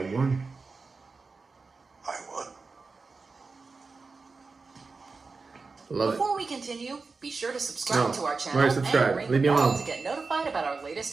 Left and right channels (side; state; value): left; quieter; 4.3 dB